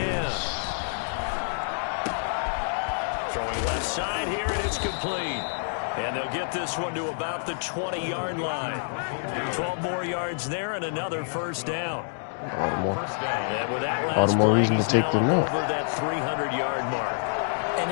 Throwing left side here, and it's complete. And they'll get this one to about the 20-yard line. 12 more yards there and another first down. All the more reason to take the nap. Over that 300-yard mark.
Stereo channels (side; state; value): right; silent; digital silence